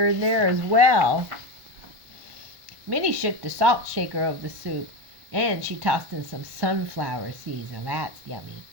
in there as well. Minnie shook the salt shaker of the soup, and she tossed in some sunflower seeds. Now that's yummy.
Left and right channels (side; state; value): left; late; 1.2 ms